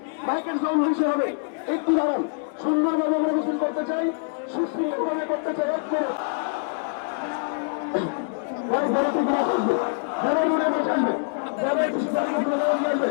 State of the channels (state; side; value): silent; right; digital silence